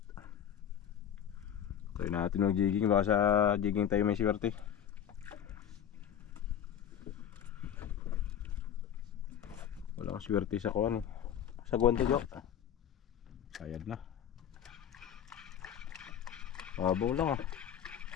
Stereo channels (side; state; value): right; quieter; 9.2 dB